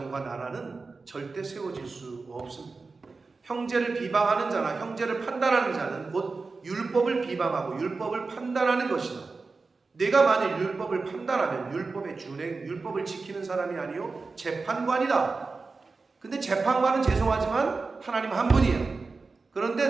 나라는 절대 세워질 수 없습니다. 형제를 비방하는 자나 형제를 판단하는 자는 곧 율법을 비방하고 율법을 판단하는 것이다. 내가 만일 율법을 판단하면 율법의 준행, 율법을 지키는 사람이 아니요 재판관이다. 근데 재판관은 죄송하지만 하나님 한 분이에요.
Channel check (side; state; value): left; quieter; 4.1 dB